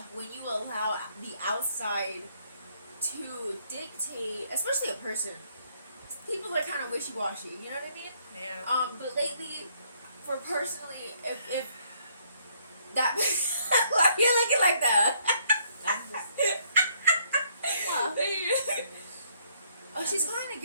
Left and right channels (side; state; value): both; inverted; correlation -0.67